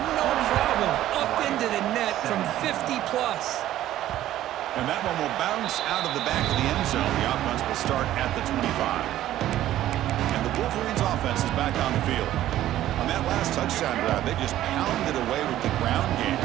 No problem. Up into the net from 50+. And that one will bounce out of the back of the end zone. The offense will start at the 25. And the Wolverines offense is back on the field. On that last touchdown drive, they just pounded away with the ground game.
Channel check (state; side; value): quieter; left; 13.4 dB